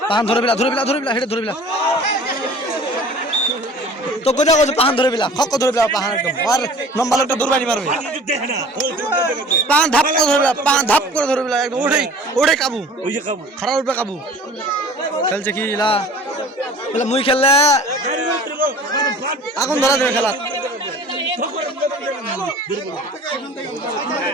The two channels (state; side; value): normal; both; correlation 0.45